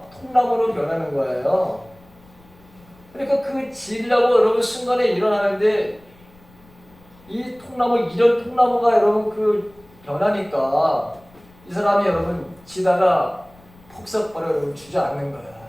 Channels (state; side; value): noise; left; rumble, 27 dB below the sound